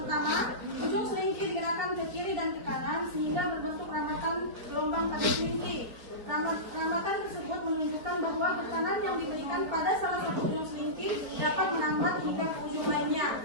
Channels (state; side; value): late; left; 4.6 ms